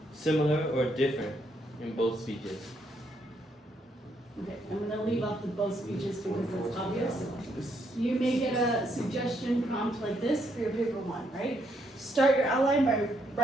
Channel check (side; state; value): both; normal; correlation 0.75